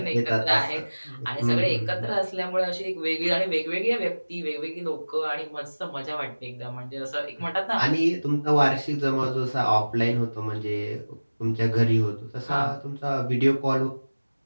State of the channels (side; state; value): both; inverted; correlation -1.00